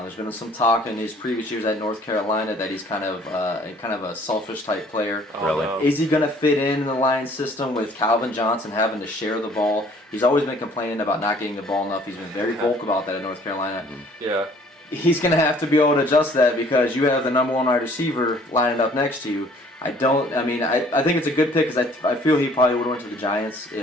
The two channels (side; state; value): both; normal; correlation 0.56